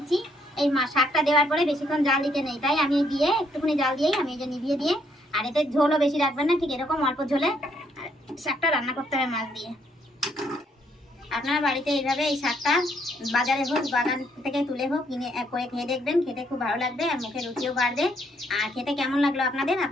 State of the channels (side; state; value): both; normal; correlation 0.70